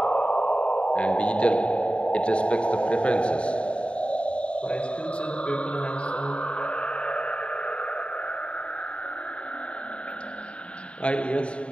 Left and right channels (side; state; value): right; late; 0.060 ms